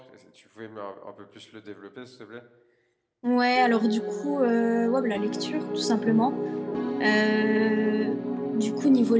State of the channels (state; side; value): identical; both; correlation 1.00